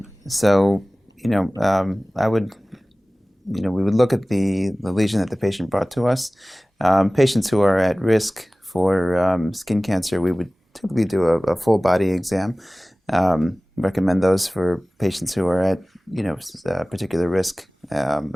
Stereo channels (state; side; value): normal; both; correlation 0.98